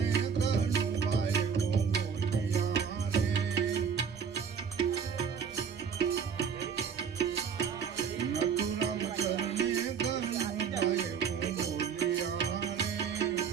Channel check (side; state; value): left; quieter; 6.8 dB